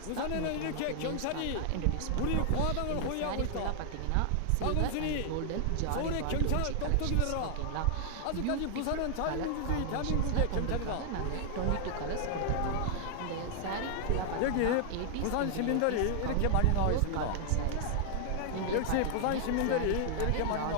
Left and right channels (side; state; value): both; different; correlation 0.00